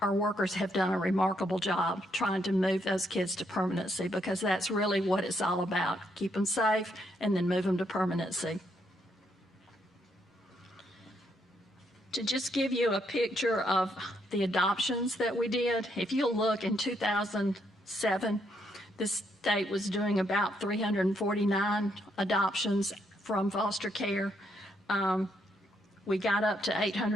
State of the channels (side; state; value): both; normal; correlation 0.75